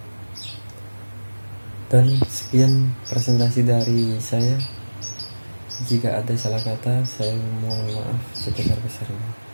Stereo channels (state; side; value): inverted; both; correlation -1.00